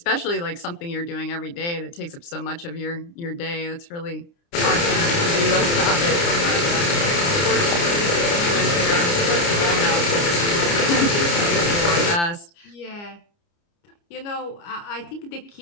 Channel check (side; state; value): right; late; 29 ms